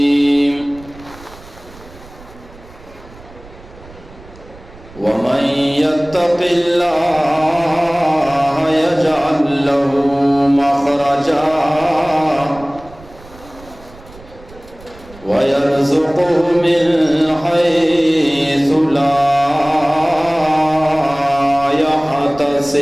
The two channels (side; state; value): right; noise; rumble, 21 dB below the sound